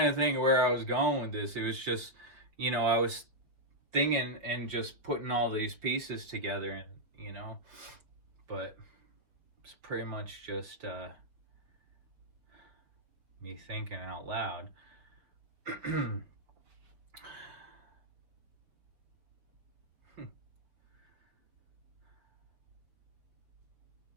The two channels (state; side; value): late; left; 5.7 ms